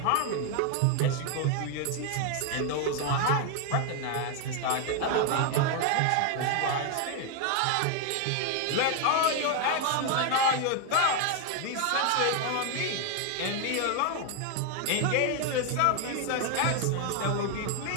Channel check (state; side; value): different; both; correlation 0.01